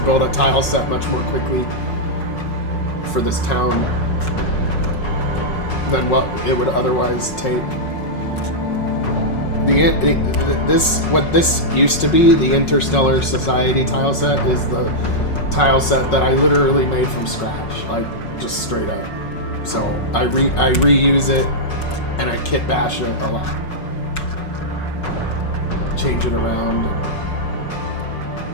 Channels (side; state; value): right; late; 5.4 ms